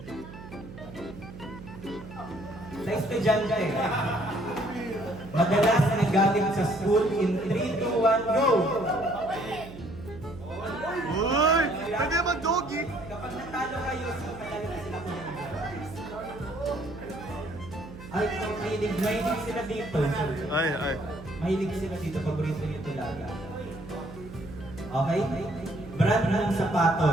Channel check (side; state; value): right; noise; hum, 15 dB below the sound